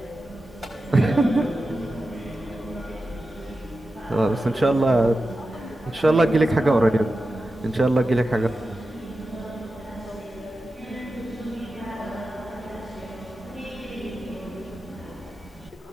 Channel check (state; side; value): normal; both; correlation 0.92